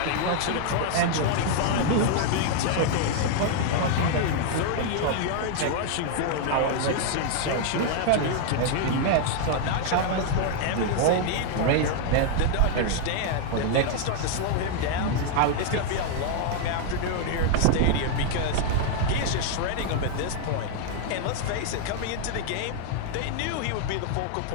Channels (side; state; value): both; different; correlation 0.00